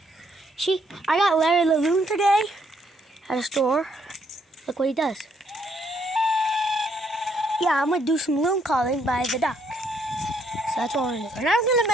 See, I got Larry the loon today at a store. Look what he does. Yeah, I'm gonna do some loon calling by the duck. So that's what we're gonna do. And I'm gonna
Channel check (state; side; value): normal; both; correlation 0.71